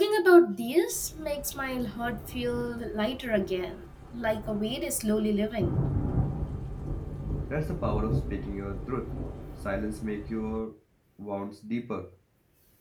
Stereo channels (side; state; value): both; identical; correlation 1.00